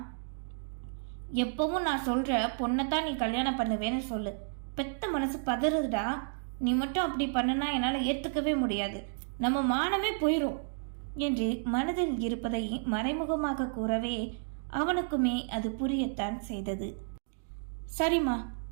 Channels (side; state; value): left; silent; digital silence